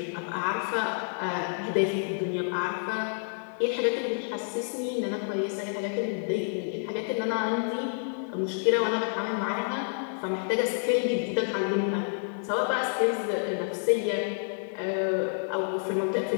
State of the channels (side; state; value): right; silent; digital silence